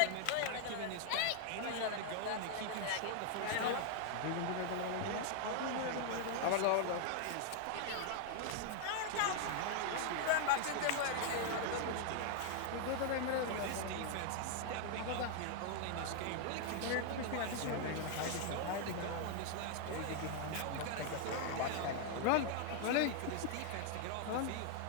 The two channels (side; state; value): both; different; correlation 0.00